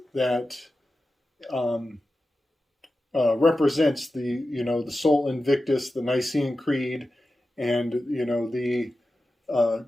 that represents the Sol Invictus, the Nicene Creed, and the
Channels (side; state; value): both; normal; correlation 0.93